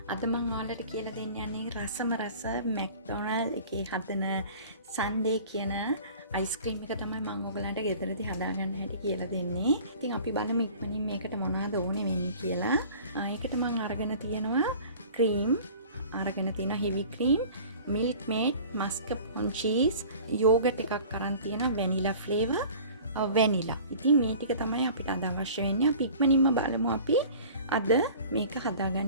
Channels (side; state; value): both; inverted; correlation -0.44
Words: අද මම ඔයාලට කියලා දෙන්න යන්නේ රසම රස McDonald එකේ හදන Sundae කියන අයිස්ක්‍රීම් එක තමයි මම ඔයගලන්ට ගෙදරදී හදාගන්න හැටි කියලා දෙන්නේ. ඉතින් අපි බලමු ඉක්මනින් මේකට මොනවද ඕනේ වෙන්නේ කියලා. ඒකට මම අරගෙන තියෙනවා cream, අරගෙන තියෙනවා heavy cream, milk maid, mascarpone cheese, yogurt එකක් අරන් තියෙනවා vanilla flavor, vanilla. ඉතින් මේ ටික තමයි අපිට අද අවශ්‍ය වෙන්නේ. අපි ඉක්මනින්ම බලමු අපි අද මේක